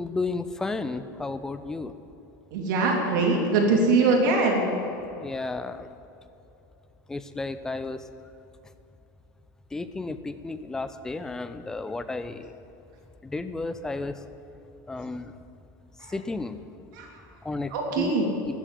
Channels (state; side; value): normal; both; correlation 0.31